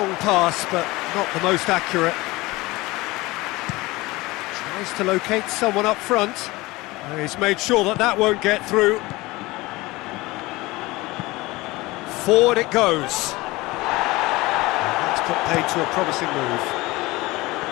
pass, but not the most accurate. Tries to locate someone up front. He's made sure that that won't get through. Forward it goes. And that's put paid to a promising move.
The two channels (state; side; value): quieter; right; 21.0 dB